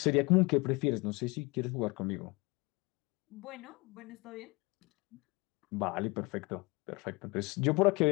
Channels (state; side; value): quieter; right; 25.6 dB